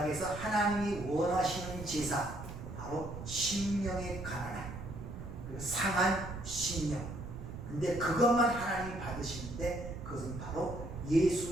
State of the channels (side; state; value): right; noise; rumble, 10 dB below the sound